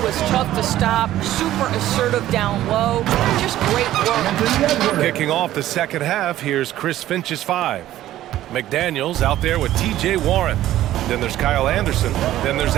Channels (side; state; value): left; quieter; 13.7 dB